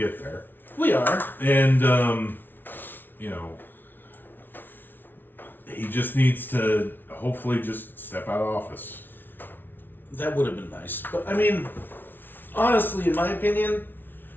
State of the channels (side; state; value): right; late; 0.096 ms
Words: there. we are. And he just needs to hopefully just step out of office. That would have been nice, but I mean, honestly, in my opinion,